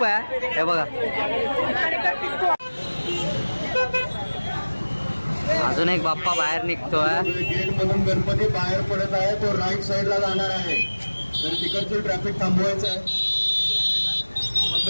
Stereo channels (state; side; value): inverted; both; correlation -1.00